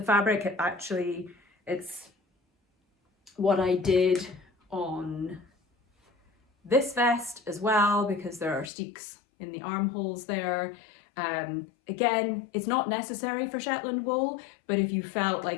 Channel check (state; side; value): drops out; right; at 8.7 s